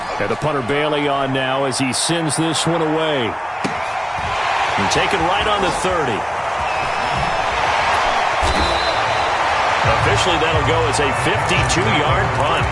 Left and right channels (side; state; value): both; identical; correlation 1.00